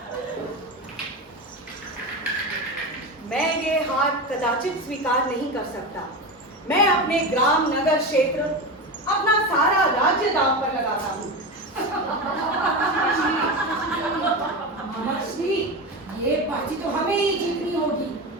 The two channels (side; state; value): both; normal; correlation 0.21